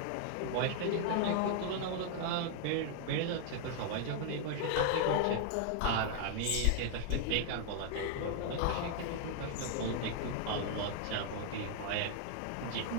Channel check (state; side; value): different; both; correlation 0.00